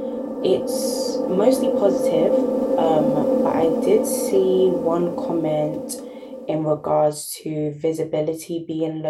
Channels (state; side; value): identical; both; correlation 1.00